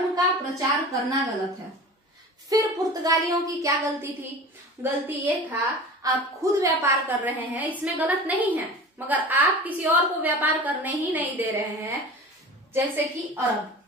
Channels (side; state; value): both; normal; correlation 0.36